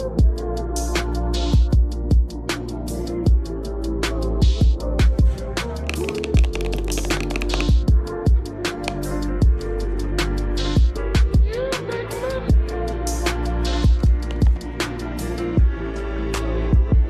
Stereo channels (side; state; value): both; identical; correlation 1.00